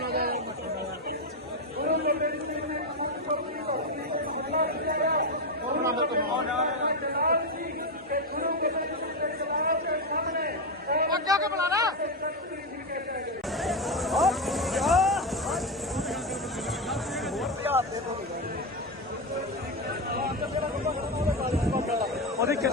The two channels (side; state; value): both; normal; correlation 0.11